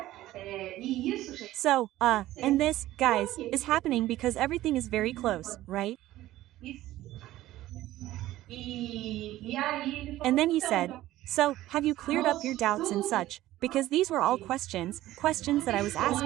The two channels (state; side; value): quieter; left; 15.3 dB